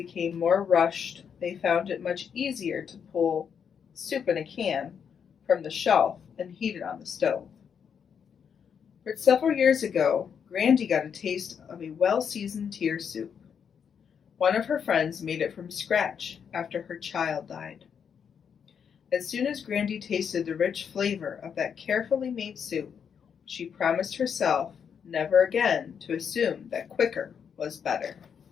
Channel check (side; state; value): right; quieter; 7.3 dB